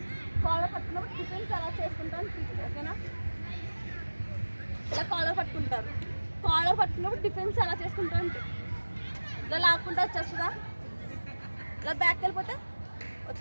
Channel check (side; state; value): both; inverted; correlation -1.00